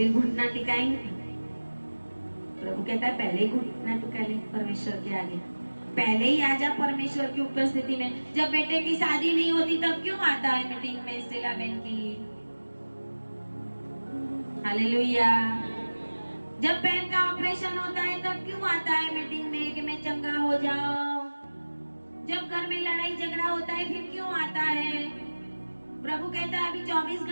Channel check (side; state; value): both; inverted; correlation -1.00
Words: घुटना टिकाएंगे? प्रभु कहता है पहले ही घुटना टिका ले परमेश्वर के आगे, पहले ही आजा परमेश्वर की उपस्थिति में। जब बेटे की शादी नहीं होती तब क्यों आता है मीटिंग में स्टेला बहन की? हालेलुया। जब बहन का ऑपरेशन होता है तब क्यों आता है मीटिंग में कि मैं चंगा हो जाऊं? जब घर में लड़ाई झगड़ा होता है फिर क्यों आता है? प्रभु कहता है अभी 24